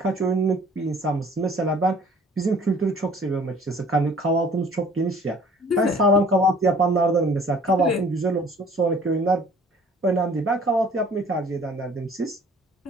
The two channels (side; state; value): both; normal; correlation 0.53